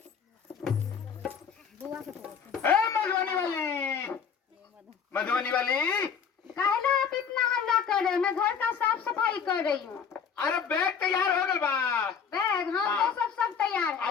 मधुबनी वाली? मधुबनी वाली, काहे आप इतना हल्ला कर रहे हैं? मैं घर का साफ सफाई कर रही हूँ। अरे बैग तैयार हो गल बा? बैग हाँ, तो सब तैयार है।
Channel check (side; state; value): right; quieter; 6.9 dB